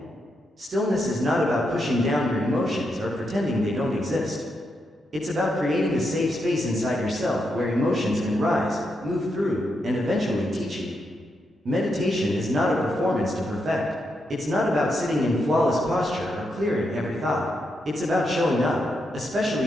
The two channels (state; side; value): normal; both; correlation 0.83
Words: Stillness is not about pushing down your emotions or pretending they don't exist. It's about creating a safe space inside yourself where emotions can rise, move through, and eventually teach you. Meditation is not a performance to perfect. It's not about sitting in flawless posture or clearing every thought. It's about showing up,